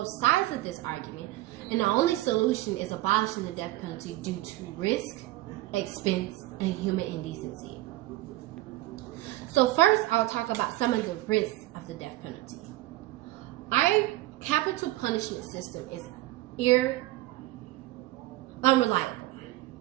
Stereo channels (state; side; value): quieter; left; 17.3 dB